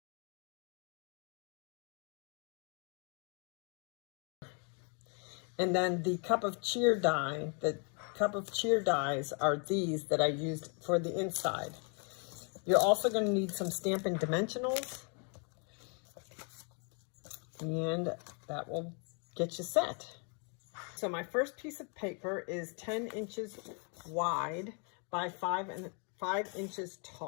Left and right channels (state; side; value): quieter; right; 38.0 dB